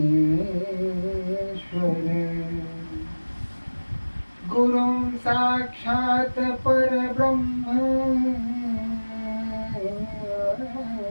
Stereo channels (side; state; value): both; inverted; correlation -1.00